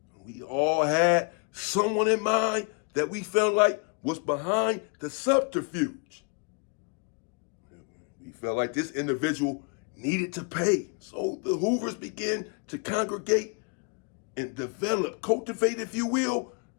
We all had someone in mind that we felt like was behind the subterfuge. We felt like this individual needed to pay. So the Hoovers began to congregate and develop, cultivate, if you will,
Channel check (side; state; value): right; quieter; 35.8 dB